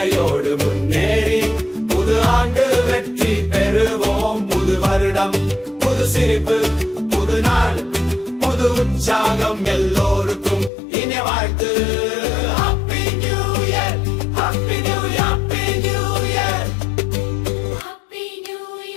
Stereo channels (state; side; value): drops out; right; at 10.7 s